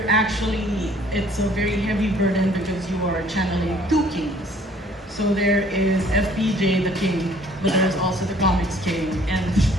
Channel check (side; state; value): both; normal; correlation 0.57